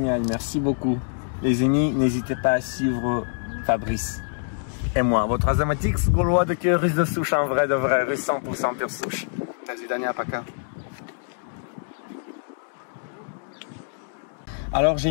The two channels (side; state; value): right; silent; digital silence